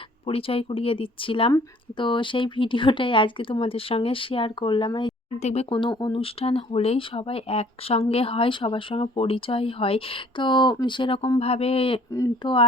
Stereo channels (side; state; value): both; normal; correlation 0.56